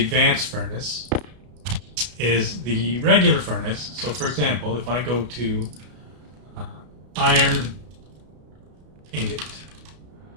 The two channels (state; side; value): late; left; 33 ms